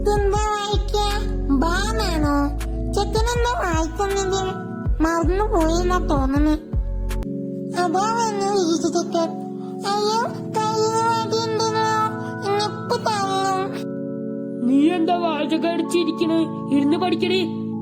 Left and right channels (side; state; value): both; identical; correlation 1.00